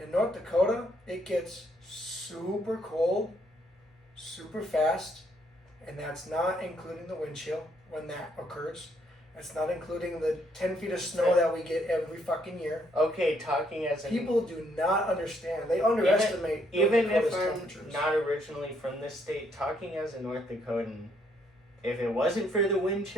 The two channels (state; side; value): normal; both; correlation 0.70